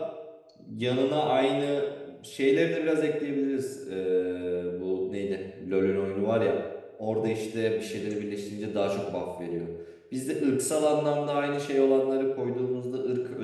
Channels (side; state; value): both; identical; correlation 1.00